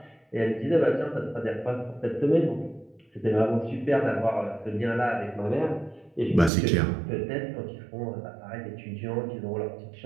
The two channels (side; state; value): left; drops out; at 6.5 s